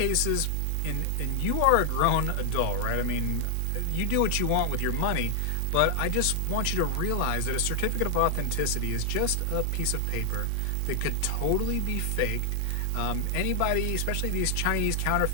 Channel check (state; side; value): different; both; correlation 0.00